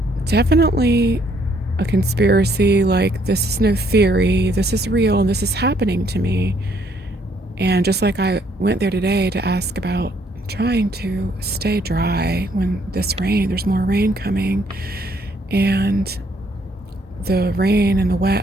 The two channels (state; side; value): normal; both; correlation 0.68